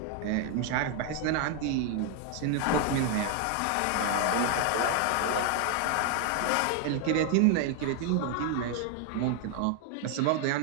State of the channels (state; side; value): different; both; correlation 0.00